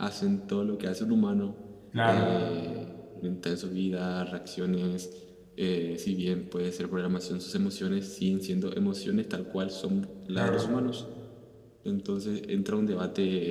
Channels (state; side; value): identical; both; correlation 1.00